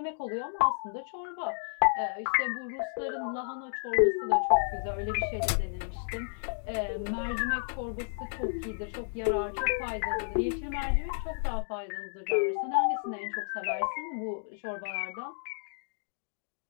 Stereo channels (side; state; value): right; silent; digital silence